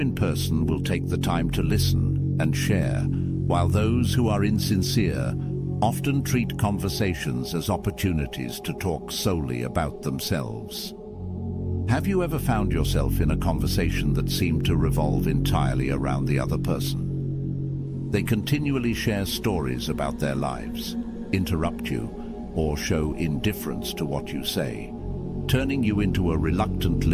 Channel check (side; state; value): both; identical; correlation 1.00